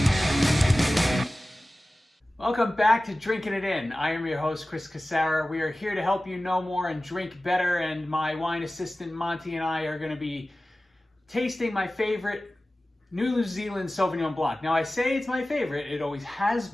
Welcome back to Drinking It In. I am your host, Chris Casara. We are here to help you know more and drink better, and my wine assistant, Monty, and I are going to be tasting my favorite New Zealand Sauvignon Blanc. Now, I say it's my favorite. It always has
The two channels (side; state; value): both; normal; correlation 0.96